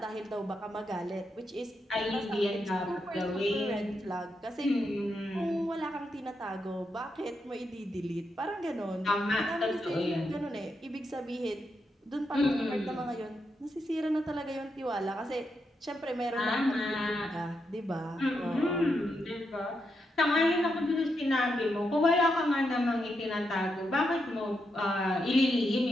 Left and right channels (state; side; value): normal; both; correlation 0.83